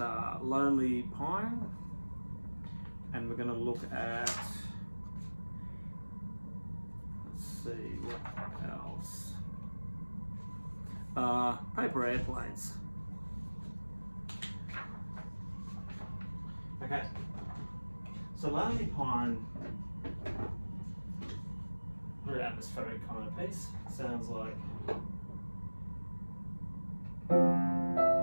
Lonely Pine, and we're going to look at, let's see, what else? Paper Airplanes. Okay, so Lonely Pine, very atmospheric kind of piece. Sounds like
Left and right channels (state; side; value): inverted; both; correlation -1.00